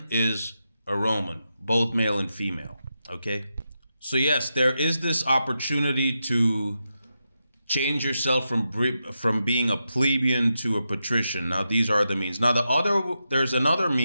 is a Roman, both male and female. Okay? So, yes, there is this opportunity to change yourself from being a plebeian to a patrician. Now, these are the means. Now, there's another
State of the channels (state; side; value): inverted; both; correlation -0.87